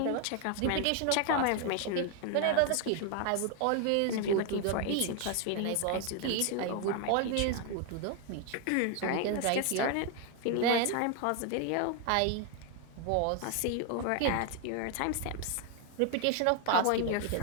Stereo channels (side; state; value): both; different; correlation 0.01